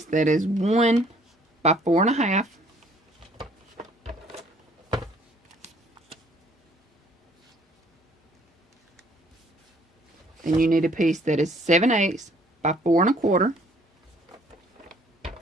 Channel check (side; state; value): both; normal; correlation 0.60